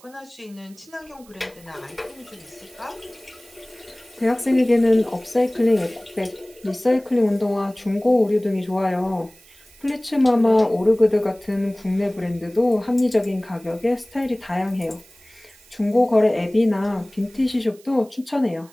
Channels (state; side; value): noise; right; hiss, 26 dB below the sound